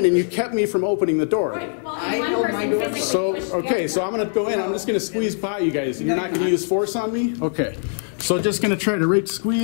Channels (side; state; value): right; silent; 64 dB below the other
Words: and you kept me from opening the door. well, I one held my person door. physically So, pushed the okay, other so I'm gonna go in, I'm just gonna squeeze by you guys, and you're not gonna use force on me? Okay. So just gonna try to